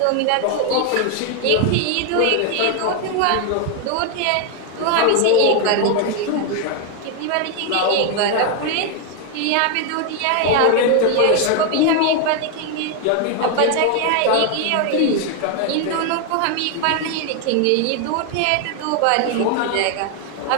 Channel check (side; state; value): both; different; correlation 0.01